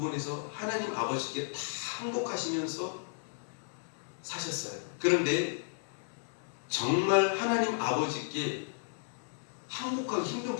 하나님 아버지께 다 항복하시면서 사셨어요. 그런데 정말 하나님 아버지께 항복하기 힘든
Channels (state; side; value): silent; right; 55 dB below the other